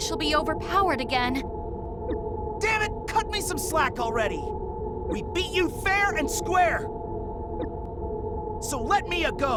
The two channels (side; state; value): both; identical; correlation 1.00